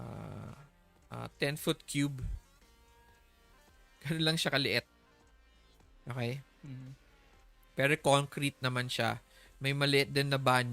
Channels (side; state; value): both; identical; correlation 1.00